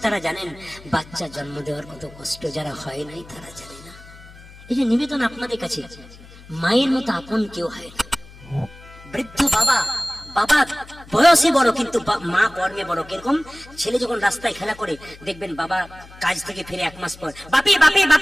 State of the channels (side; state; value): left; noise; hum, 20 dB below the sound